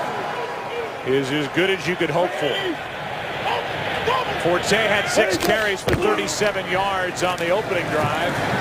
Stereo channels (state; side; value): identical; both; correlation 1.00